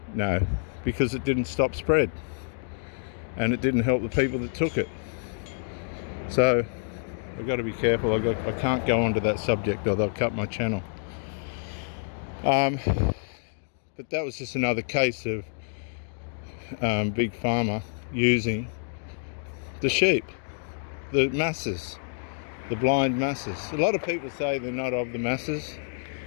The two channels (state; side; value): silent; right; digital silence